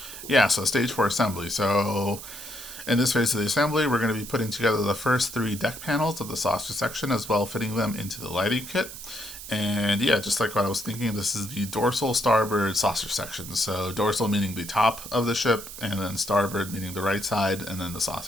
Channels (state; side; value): noise; right; hiss, 12 dB below the sound